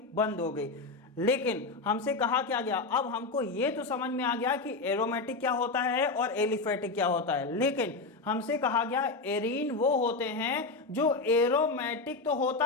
बंद हो गई। लेकिन हमसे कहा क्या गया? अब हमको ये तो समझ में आ गया कि एरोमेटिक क्या होता है और एलिफेटिक क्या होता है, लेकिन हमसे कहा गया एरीन वो होते हैं जो एरोमेटिक तो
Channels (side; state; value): right; quieter; 3.8 dB